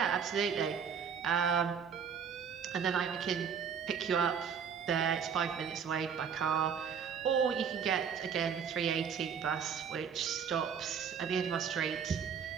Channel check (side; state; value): left; quieter; 7.2 dB